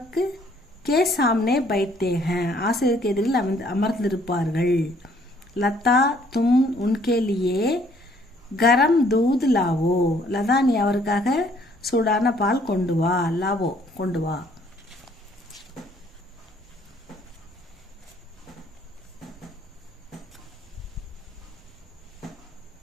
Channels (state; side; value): normal; both; correlation 0.63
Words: के सामने बैठते हैं ஆசிரியருக்கு எதிரில் அமர்ந்திருப்பார்கள். लता तुम उनके लिए गरम दूध लावो लता நீ அவருக்காக சூடான பால் கொண்டு வா. லாவோ கொண்டு வா.